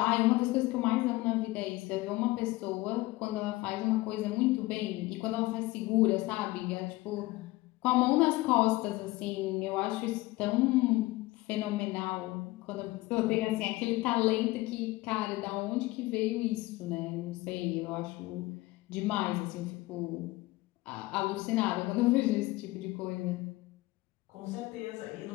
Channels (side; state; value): right; quieter; 19.9 dB